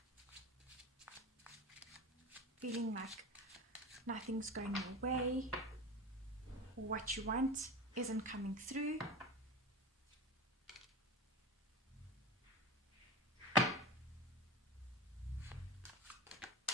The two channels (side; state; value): both; normal; correlation 0.29